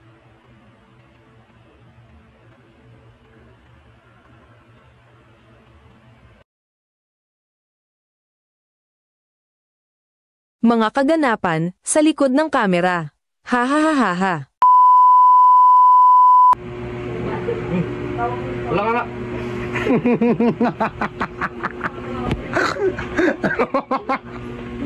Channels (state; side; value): identical; both; correlation 1.00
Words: Mga kaganapan sa likod ng kamera. Ha ha ha ha ha. Wala ka nga.